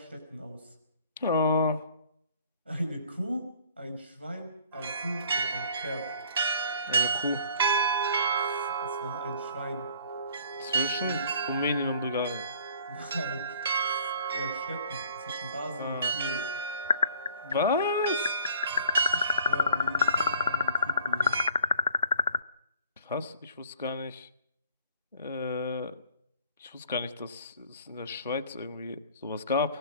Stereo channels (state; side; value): inverted; both; correlation -0.54